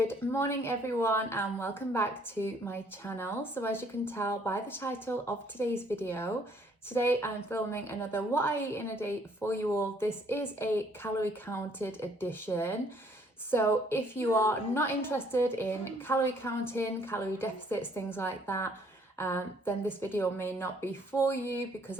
morning everyone and welcome back to my channel. So as you can tell by the title of today's video, today I'm filming another What I Eat in a Day for you all. This is a calorie counted edition. So if you are not interested in calorie counting, calorie deficits, things like that, then this video may not be for you because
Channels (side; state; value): both; normal; correlation 0.63